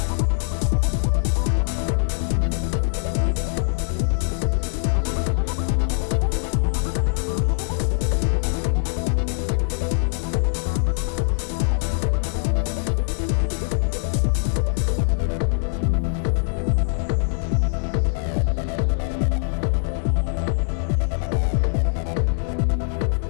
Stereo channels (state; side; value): silent; right; digital silence